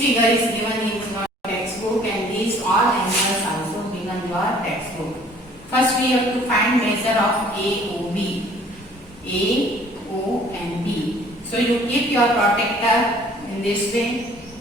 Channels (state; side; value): normal; both; correlation 0.55